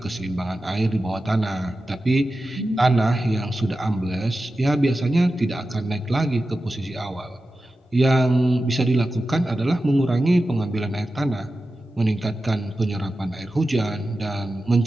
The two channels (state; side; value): normal; both; correlation 0.93